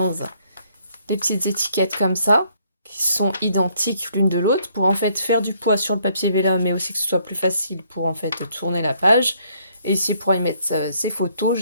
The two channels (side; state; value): both; inverted; correlation -0.67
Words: des petites étiquettes comme ça, qui sont identiques l'une de l'autre, pour en fait faire du poids sur le papier vélum, mais aussi que ce soit plus facile pour en fait tourner la page. Et ici, pour y mettre ces photos,